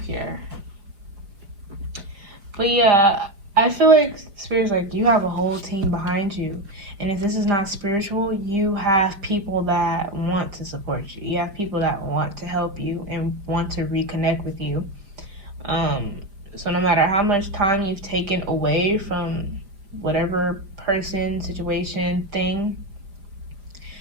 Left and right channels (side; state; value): left; late; 4.9 ms